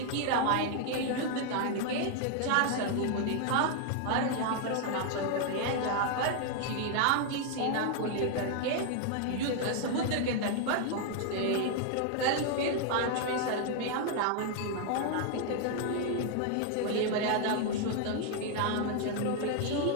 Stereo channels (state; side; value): different; both; correlation 0.00